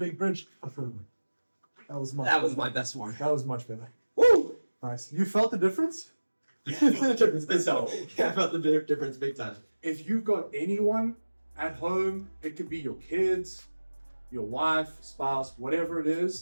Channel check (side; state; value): both; inverted; correlation -1.00